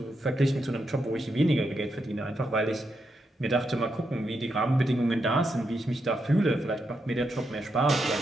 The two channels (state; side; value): normal; both; correlation 0.83